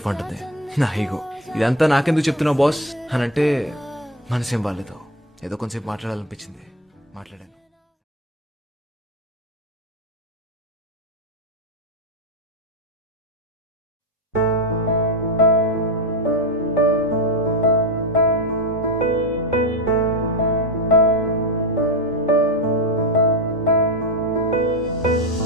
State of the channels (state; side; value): normal; both; correlation 0.18